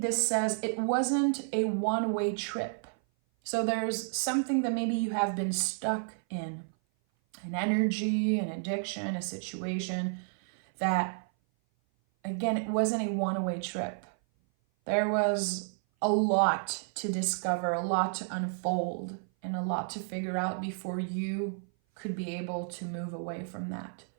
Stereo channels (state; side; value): silent; left; 56 dB below the other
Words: says it wasn't a one-way trip. So there's something that maybe you have been stuck in. An energy, an addiction, a situation that, again, it wasn't a one-way trip. There was a lot to discover, a lot to unfold, and a lot to figure out before you could be able to move away from that.